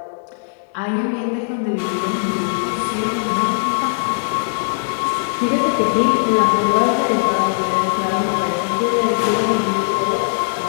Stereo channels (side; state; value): right; silent; digital silence